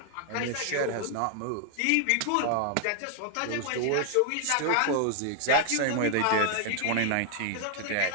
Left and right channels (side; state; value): both; different; correlation 0.00